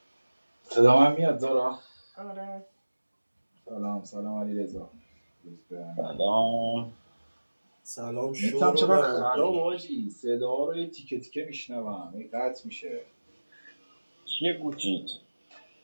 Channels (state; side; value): inverted; both; correlation -1.00